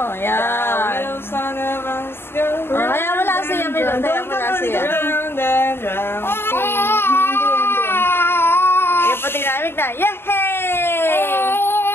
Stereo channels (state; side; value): late; right; 0.11 ms